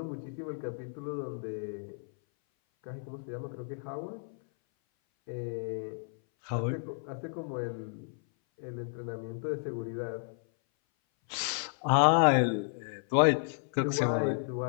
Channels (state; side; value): silent; right; 56 dB below the other